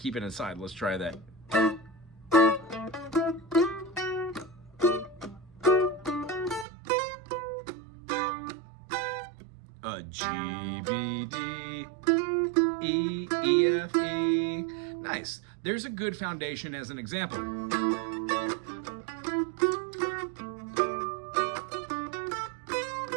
it inside, let's try that. G, B, D, E, E, F, E. Nice. There's a good foundation as an example.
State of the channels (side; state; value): left; drops out; at 6.7 s